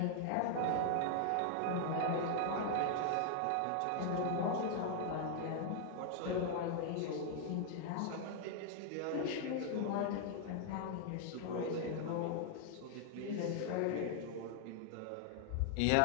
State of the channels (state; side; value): different; both; correlation 0.00